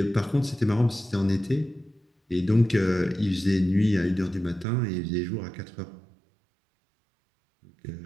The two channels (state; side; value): drops out; left; at 4.7 s